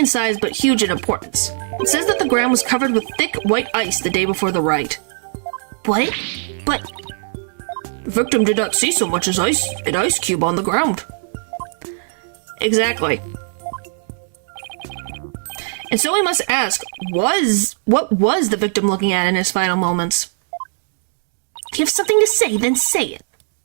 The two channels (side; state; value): left; silent; digital silence